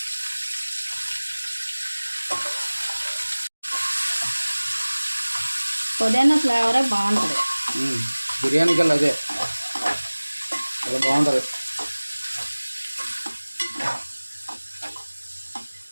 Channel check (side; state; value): both; inverted; correlation -1.00